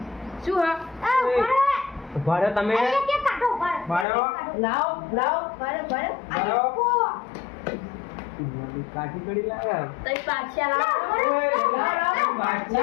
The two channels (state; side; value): drops out; right; at 4.0 s